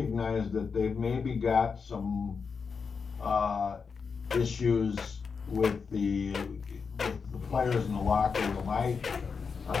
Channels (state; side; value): quieter; right; 5.5 dB